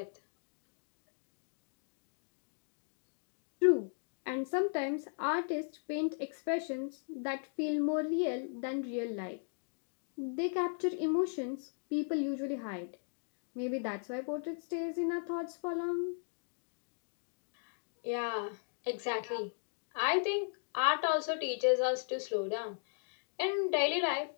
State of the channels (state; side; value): silent; right; digital silence